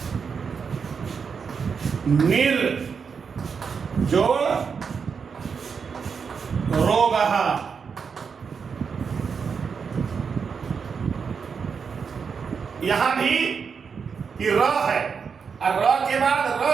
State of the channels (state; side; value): quieter; left; 6.0 dB